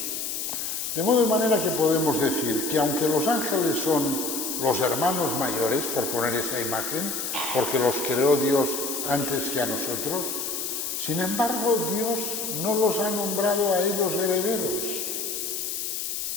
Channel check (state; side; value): noise; left; hiss, 3 dB below the sound